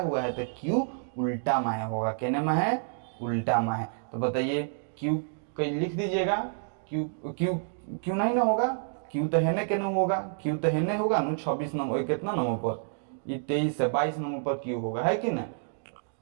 है तो क्यू उल्टा में होगा। कहने में है? उल्टा में है। तो बताइए, क्यू कहीं लिख दीजिएगा। क्यू क्यू क्यू नहीं ना होगा? क्यू तो हेने के नहीं होगा? क्यू तो हेने होगा ना 26 नंबर, कितना नंबर पर? ये 23 से 22 नंबर पर क्यू होगा, है कि नहीं?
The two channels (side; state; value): left; silent; digital silence